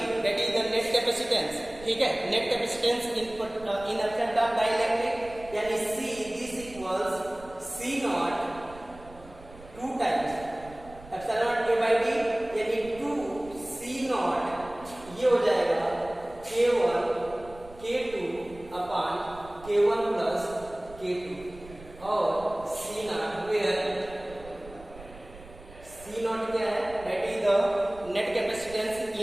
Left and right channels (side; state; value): right; noise; rumble, 19 dB below the sound